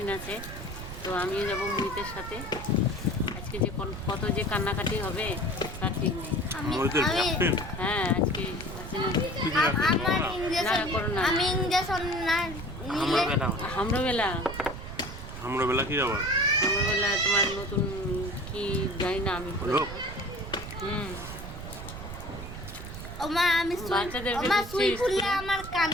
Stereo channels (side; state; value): right; noise; rumble, 10 dB below the sound